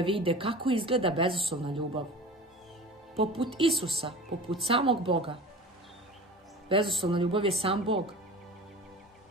kako izgleda bezuslovna ljubav. Poput Isusa, poput samog Boga. Bezuslovna ljubav je sam Bog.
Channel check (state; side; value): normal; both; correlation 0.37